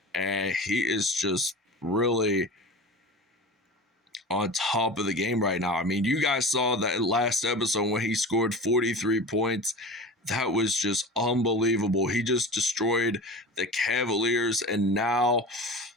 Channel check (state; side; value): normal; both; correlation 0.33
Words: and he is just really on top of the game right now. I mean, you guys saw that last episode when he scored 43 points. That was just unbelievable. He just destroyed the Cavaliers, and now